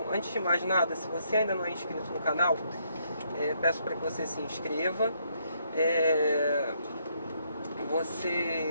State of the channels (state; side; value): inverted; both; correlation -0.72